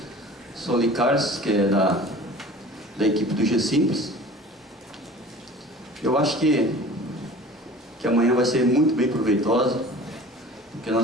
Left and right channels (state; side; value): normal; both; correlation 0.43